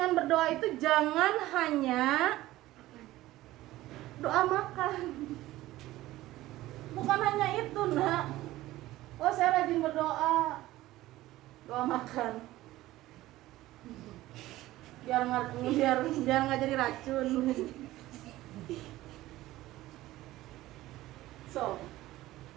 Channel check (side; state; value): left; quieter; 16.4 dB